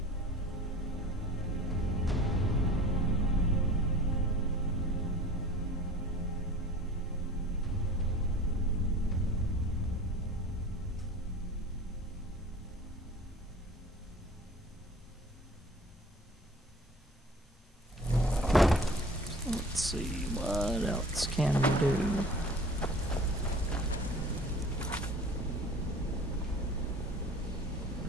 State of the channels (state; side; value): normal; both; correlation 0.44